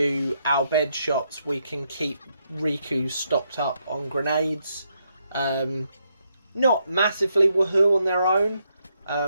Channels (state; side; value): inverted; both; correlation -0.78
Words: our bed shops, we can keep Riku stocked up on grenades. Not massively woohoo on their own,